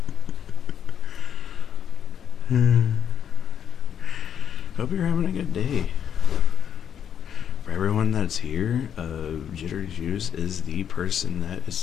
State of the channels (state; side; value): quieter; right; 8.7 dB